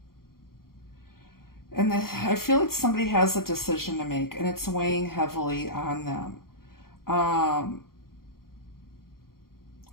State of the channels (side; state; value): right; late; 0.93 ms